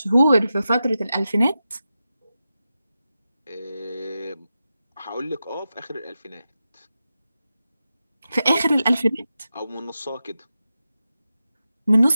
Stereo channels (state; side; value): inverted; both; correlation -0.90